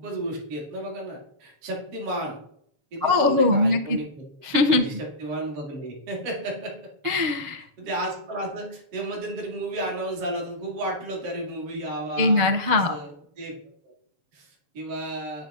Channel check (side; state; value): left; late; 7.1 ms